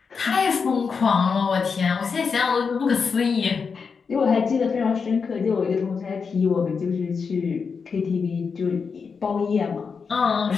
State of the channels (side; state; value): right; quieter; 5.5 dB